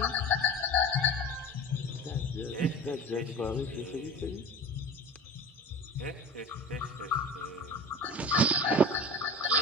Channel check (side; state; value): both; normal; correlation 0.35